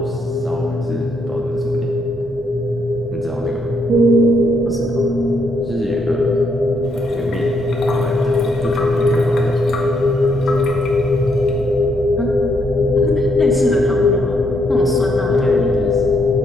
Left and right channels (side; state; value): both; normal; correlation 0.75